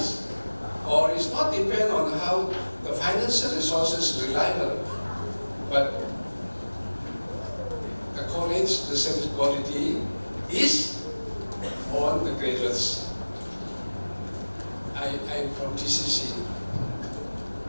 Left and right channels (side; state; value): both; inverted; correlation -1.00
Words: or it's not depend on how the financial resources reliable. But the college, the service quality is on the graduates. I'm from TCC,